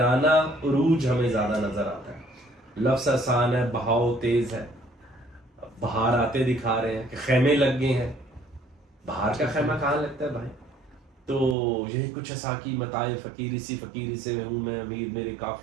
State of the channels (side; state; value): left; drops out; at 11.6 s